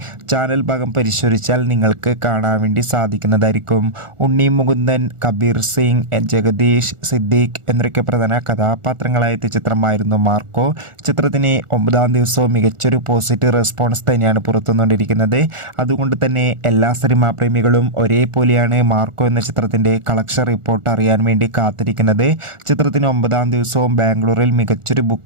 ചാനൽ ഭാഗം പരിശോധിച്ചാൽ നിങ്ങൾക്ക് കാണാൻ വേണ്ടി സാധിക്കുന്നതായിരിക്കും. ഉണ്ണി മുകുന്ദൻ, കബീർ സിംഗ്, ജഗദീഷ്, സിദ്ദീഖ് എന്നൊക്കെ പ്രധാന കഥാപാത്രങ്ങളായ ചിത്രമായിരുന്നു മാർക്കോ. ചിത്രത്തിന് 9-ാം ദിവസവും മികച്ചൊരു പോസിറ്റീവ് റെസ്പോൺസ് തന്നെയാണ് പുറത്തുവന്നുകൊണ്ടിരിക്കുന്നത്. അതുകൊണ്ട് തന്നെ എല്ലാ സിനിമാ പ്രേമികളും ഒരേപോലെയാണ് മാർക്കോ എന്ന ചിത്രത്തിൻ്റെ കളക്ഷൻ റിപ്പോർട്ട് അറിയാൻ വേണ്ടി കാത്തിരിക്കുന്നത്. ചിത്രത്തിന് 9-ാം ദിവസവും ബാംഗ്ലൂരിൽ മികച്ചൊരു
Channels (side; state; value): left; late; 1.4 ms